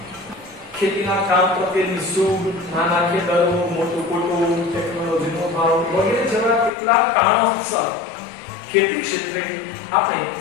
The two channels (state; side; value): drops out; right; at 6.7 s